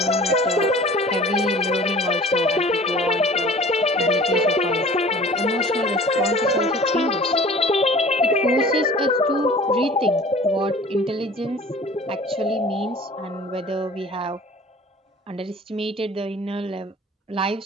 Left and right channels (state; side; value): normal; both; correlation 0.45